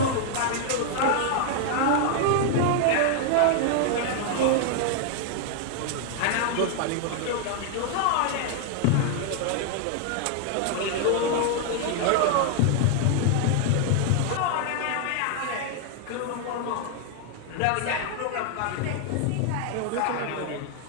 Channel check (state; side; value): different; both; correlation 0.00